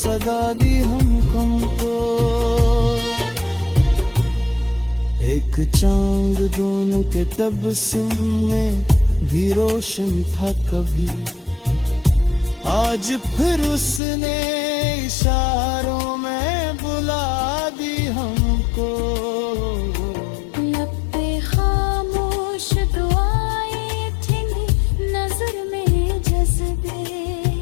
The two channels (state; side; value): drops out; right; at 14.0 s